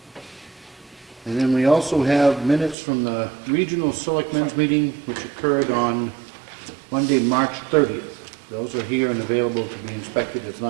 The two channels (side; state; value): left; drops out; at 2.8 s